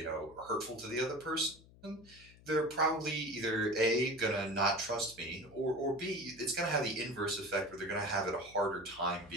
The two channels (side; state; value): left; noise; hum, 23 dB below the sound